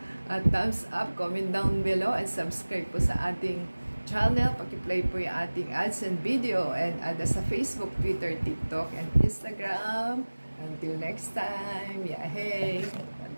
thumbs up, comment down below, and subscribe po sa ating channel. Paki-play po yung ating ads and video. And add us sa Facebook, Twitter, TikTok, and Instagram. Until next time, hey! God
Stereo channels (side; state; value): both; inverted; correlation -1.00